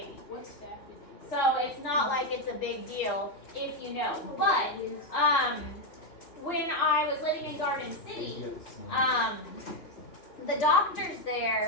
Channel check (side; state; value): right; late; 2.9 ms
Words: What's that? So it's not like it's a big deal if you know. But when I was living in Garden City, the doctors